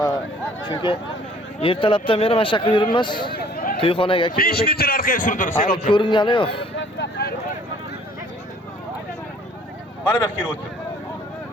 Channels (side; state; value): both; normal; correlation 0.56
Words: Chunki ertalabdan beri mana shu yoqqa yuribmiz. To'yxonaga 5 metr orqaga surdirib, ko'ringani yo'q. Mana bu kelib o'tir.